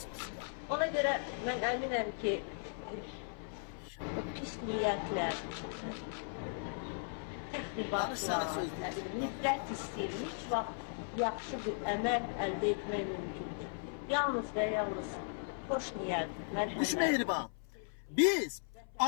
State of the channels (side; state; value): right; silent; 53 dB below the other